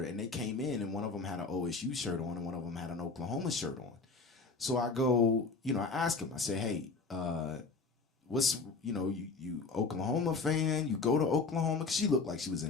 and they came in, and one of them had an OSU shirt on, and one of them had an Oklahoma shirt on. So I go, I ask him, I say, hey, what's, you Oklahoma fan? You go to Oklahoma? Because she looked like she was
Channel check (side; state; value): right; quieter; 4.2 dB